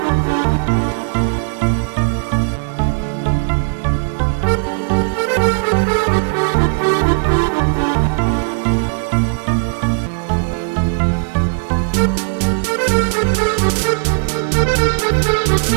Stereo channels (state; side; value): silent; left; 68 dB below the other